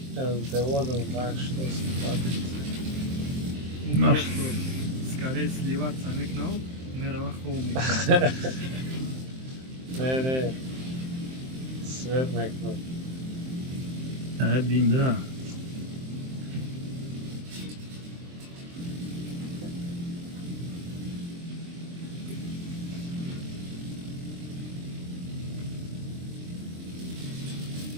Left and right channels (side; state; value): left; late; 23 ms